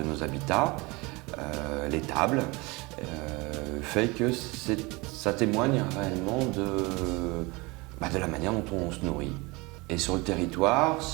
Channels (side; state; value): left; quieter; 24.9 dB